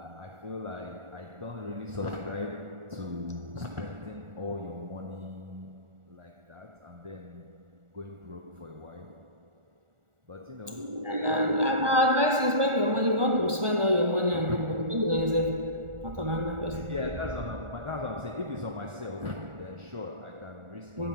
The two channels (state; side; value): late; left; 1.4 ms